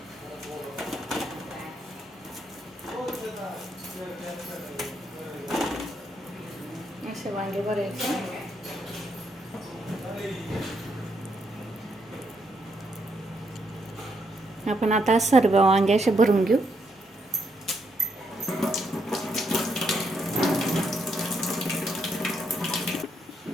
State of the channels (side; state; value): both; normal; correlation 0.77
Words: असे वांगे भरायचे. आपण आता सर्व वांगे असे भरून घेऊ.